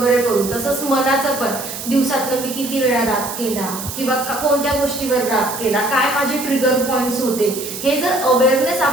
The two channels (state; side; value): noise; right; hiss, 8 dB below the sound